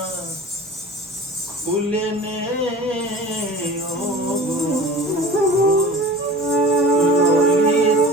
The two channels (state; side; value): normal; both; correlation 0.39